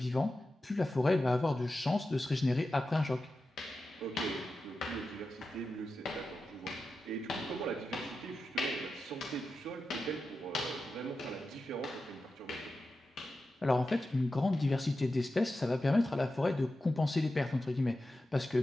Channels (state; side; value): normal; both; correlation 0.92